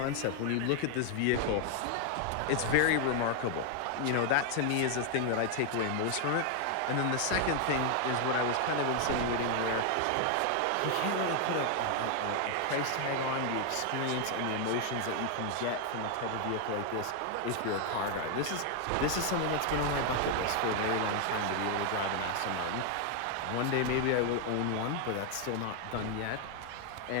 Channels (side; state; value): both; different; correlation 0.00